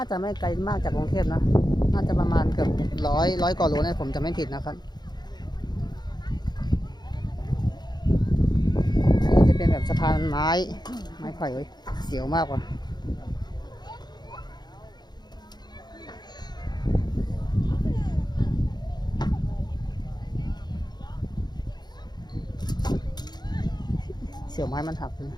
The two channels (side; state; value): right; late; 0.20 ms